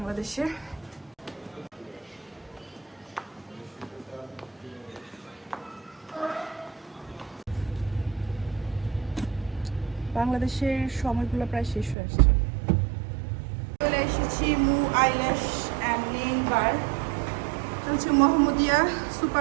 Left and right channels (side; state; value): left; drops out; at 12.0 s